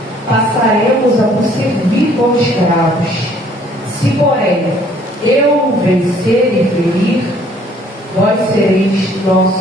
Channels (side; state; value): both; normal; correlation 0.60